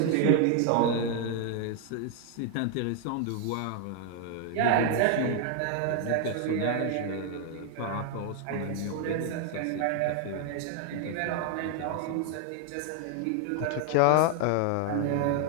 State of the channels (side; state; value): both; different; correlation 0.00